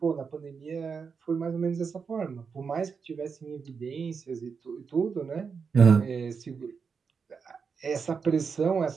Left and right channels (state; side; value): quieter; left; 5.7 dB